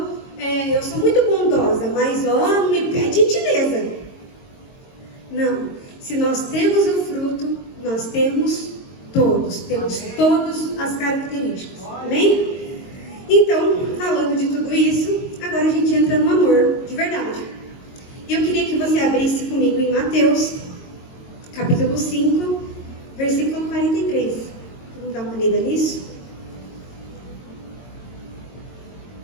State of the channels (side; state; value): right; late; 22 ms